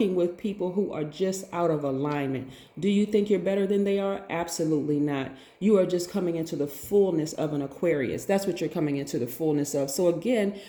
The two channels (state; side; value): identical; both; correlation 1.00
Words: with people who are just out of alignment. Do you think you're better than they are? Absolutely not. You are just coming into the fullness of an Aquarius. That's what you're coming into the fullness of. So again,